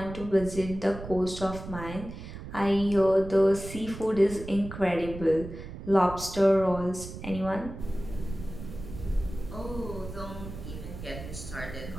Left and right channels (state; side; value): noise; right; rumble, 11 dB below the sound